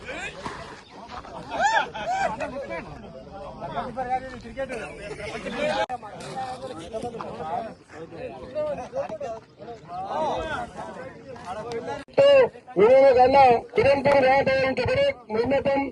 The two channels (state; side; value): identical; both; correlation 1.00